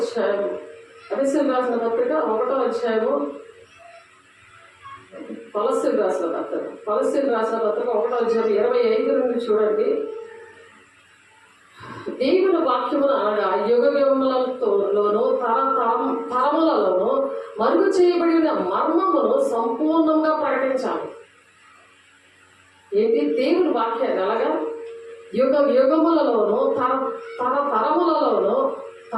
ఎఫెసీయులకు రాసిన పత్రిక 1వ అధ్యాయము కొలస్సీయులకు రాసిన పత్రిక 1వ అధ్యాయం 25 నుండి చూడండి. దేవుని వాక్యమును అనగా యుగములలోను తరములలోను మరుగు చేయబడిన మర్మమును సంపూర్ణంగా ప్రకటించాలి. ఏంటి? దేవుని వాక్యాన్ని అలాగా యుగములలోను తరములలో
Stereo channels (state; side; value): identical; both; correlation 1.00